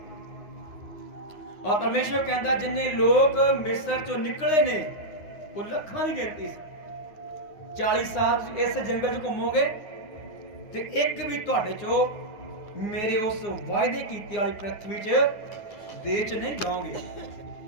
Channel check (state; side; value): late; right; 9.8 ms